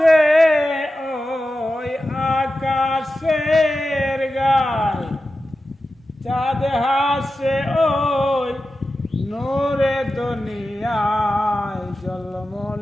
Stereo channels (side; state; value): both; normal; correlation 0.92